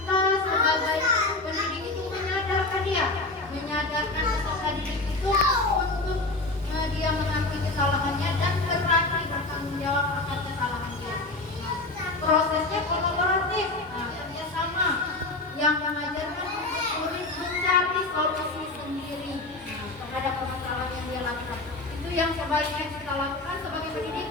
sebagai pendidik itu menyadarkan dia, menyadarkan peserta didik itu untuk dia mengakui kesalahannya dan berani bertanggung jawab akan kesalahan dia. Prosesnya kolaboratif, kerjasama yang mengajarkan murid mencari solusi sendiri terhadap permasalahan yang dia lakukan. Itu yang sebaiknya kita lakukan sebagai pendidik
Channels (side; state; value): right; quieter; 3.1 dB